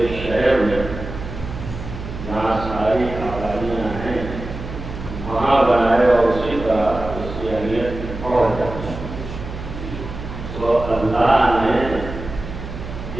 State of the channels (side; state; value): right; noise; hum, 9 dB below the sound